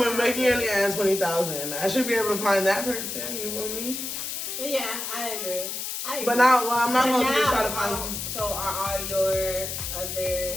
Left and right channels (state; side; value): noise; left; hiss, 5 dB below the sound